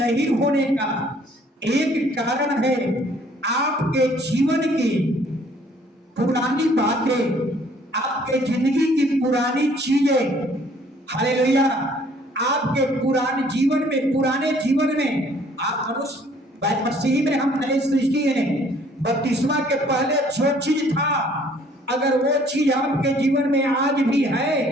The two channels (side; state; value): both; normal; correlation 0.59